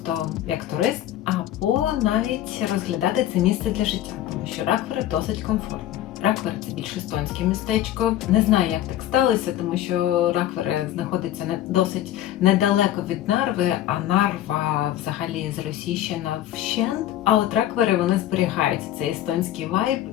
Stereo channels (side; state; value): right; quieter; 12.6 dB